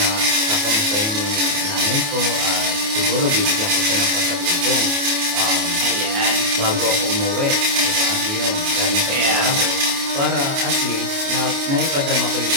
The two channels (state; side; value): late; left; 28 ms